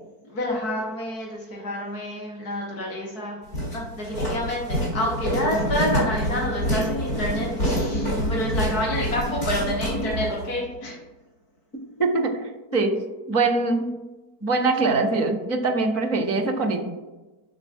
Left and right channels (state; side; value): late; right; 4.5 ms